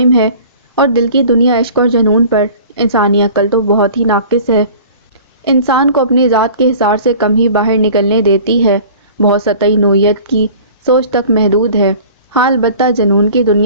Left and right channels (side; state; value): both; inverted; correlation -0.44